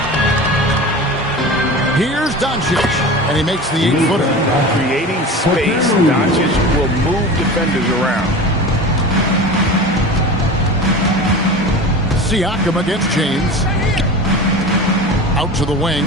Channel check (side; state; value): both; normal; correlation 0.33